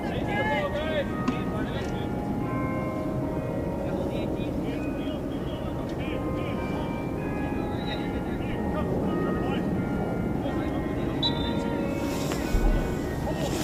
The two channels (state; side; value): identical; both; correlation 1.00